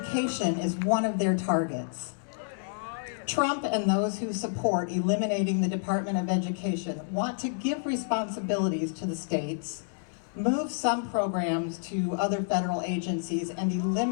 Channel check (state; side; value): silent; right; digital silence